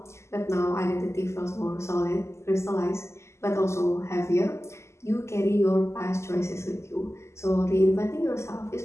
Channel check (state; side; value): late; right; 0.13 ms